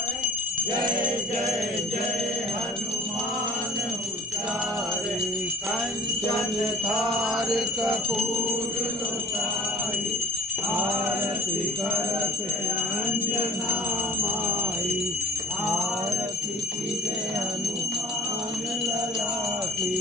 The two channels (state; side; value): normal; both; correlation 0.45